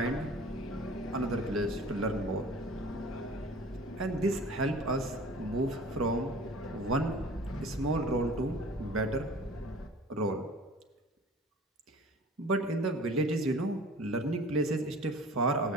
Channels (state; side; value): normal; both; correlation 0.44